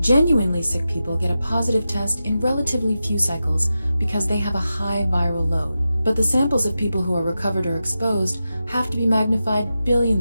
Genuinely sick people get a positive test in relatively few cycles because they have a high viral load. But the samples of people who are recovered or exposed have to be magnified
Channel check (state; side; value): inverted; both; correlation -0.91